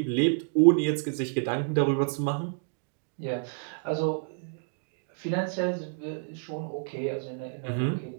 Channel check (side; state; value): left; silent; digital silence